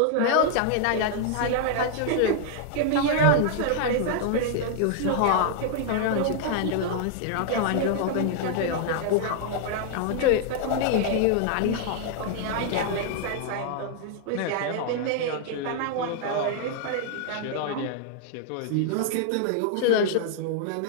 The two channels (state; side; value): different; both; correlation -0.01